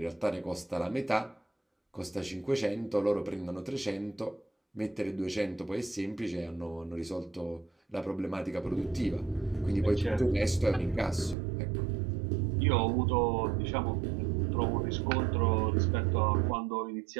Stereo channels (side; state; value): left; drops out; at 11.4 s